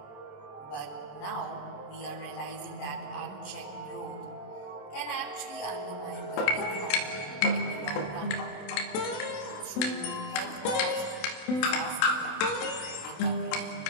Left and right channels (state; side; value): late; right; 28 ms